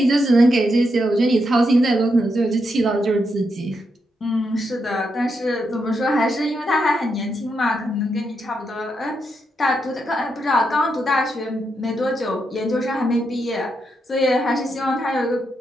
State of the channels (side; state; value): both; normal; correlation 0.82